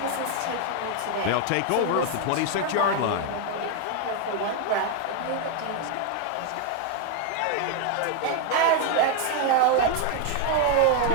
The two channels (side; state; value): both; different; correlation 0.01